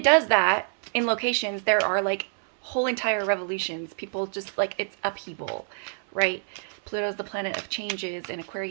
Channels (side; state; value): left; silent; 60 dB below the other